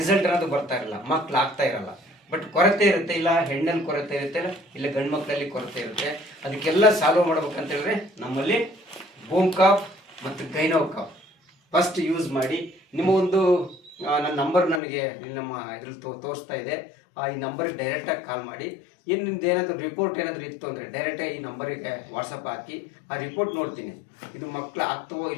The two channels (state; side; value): drops out; right; at 14.8 s